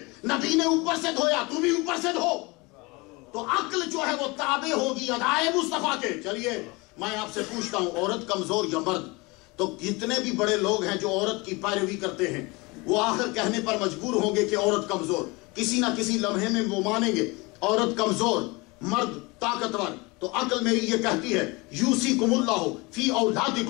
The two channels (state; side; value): quieter; right; 25.5 dB